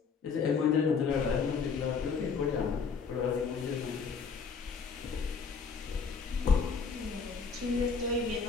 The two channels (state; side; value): quieter; right; 5.5 dB